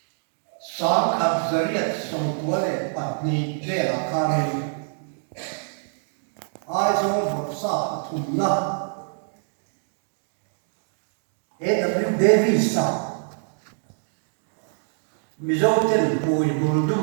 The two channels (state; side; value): silent; left; digital silence